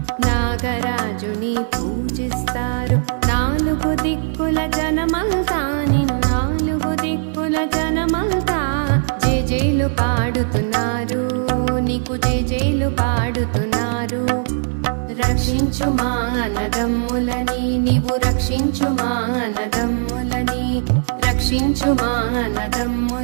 నాగరాజుని పూజిస్తారు. నాలుగు దిక్కుల జనమంతా నిన్ను నాలుగు దిక్కుల జనమంతా జేజేలు పాడుతున్నారు, నీకు జేజేలు పాడుతున్నారు. రక్షించు మా అన్నదమ్ములని, నీవు రక్షించు మా అన్నదమ్ములని, రక్షించు మా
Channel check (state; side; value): silent; left; 60 dB below the other